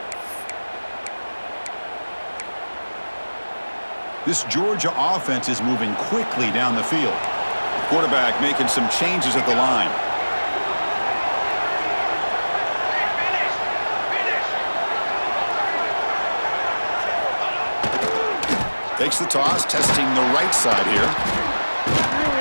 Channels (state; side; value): inverted; both; correlation -1.00